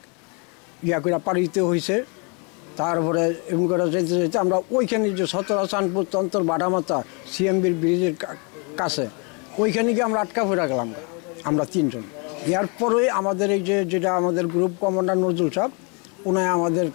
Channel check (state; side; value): quieter; right; 34.2 dB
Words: করে পাড়ি দিতে হয়েছে। তারপরে এমন করে যেতে যেতে আমরা ওইখানে যে সতরা, চাঁদপুর, তন্তর, বাটামাথা সিএমবির ব্রিজের কাছে, ওইখানে গিয়ে আমরা আটকা পড়ে গেলাম আমরা 3 জন। এরপরে আমাদের এই যেটা আমাদের গ্রুপ কমান্ডার নজরুল সাহেব, উনি